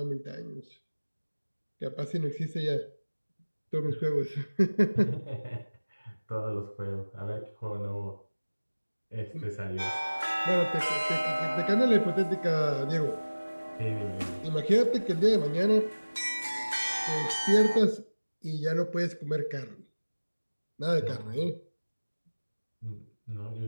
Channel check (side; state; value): both; inverted; correlation -1.00